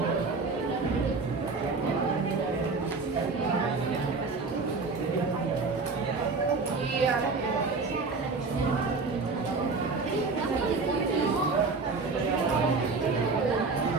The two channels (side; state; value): left; quieter; 4.2 dB